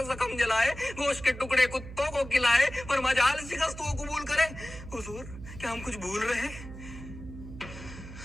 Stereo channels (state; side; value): noise; right; hum, 13 dB below the sound